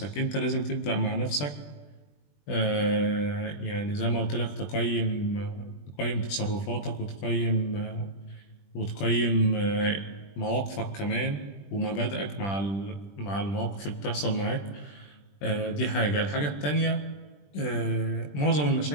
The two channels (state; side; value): late; right; 20 ms